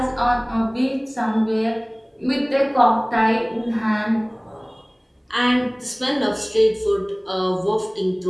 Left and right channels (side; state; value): both; identical; correlation 1.00